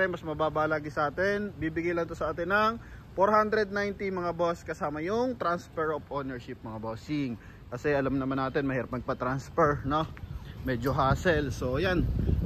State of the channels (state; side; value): identical; both; correlation 1.00